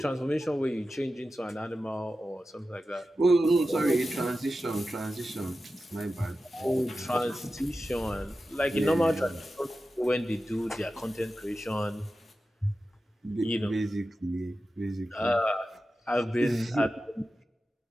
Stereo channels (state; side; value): normal; both; correlation 0.93